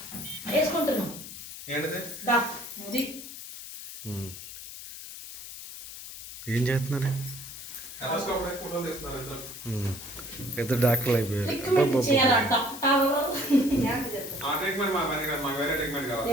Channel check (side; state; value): left; noise; hiss, 11 dB below the sound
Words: వేసుకుంటున్నాం. ఏంటిది? అది ఏం చేస్తున్నారు? ఫోటోలు తీస్తున్నారు ఇద్దరు. పెద్ద డాక్టర్లు అయిపోయారు. రికమెండ్ చేయాలా డాక్టర్? ఆ ట్రీట్మెంట్ మా పని కాదు, మాకు వేరే ట్రీట్మెంట్ కావాలి.